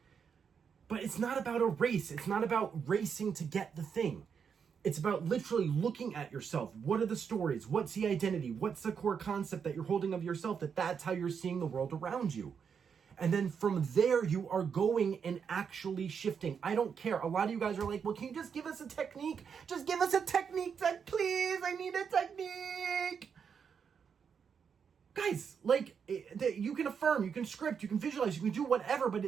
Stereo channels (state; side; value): quieter; left; 6.8 dB